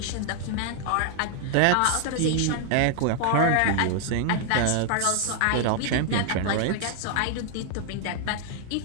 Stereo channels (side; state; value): both; different; correlation 0.00